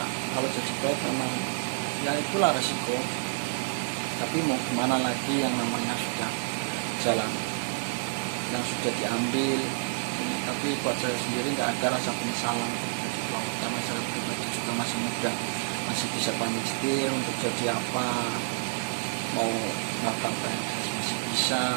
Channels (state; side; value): silent; left; digital silence